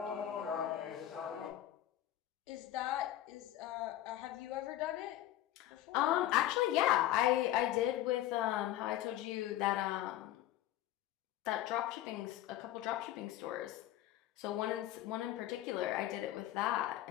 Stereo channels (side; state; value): right; quieter; 13.5 dB